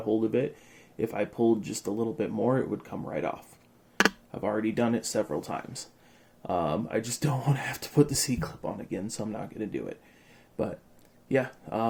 hold of it. If I pulled just a little bit more, it would come right off. I've already done it several times. I just don't want to have to put the C-clip on again, so I'm not going to do it. But yeah,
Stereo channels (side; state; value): both; identical; correlation 1.00